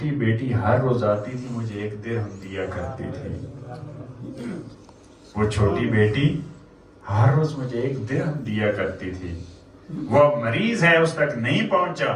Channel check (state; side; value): identical; both; correlation 1.00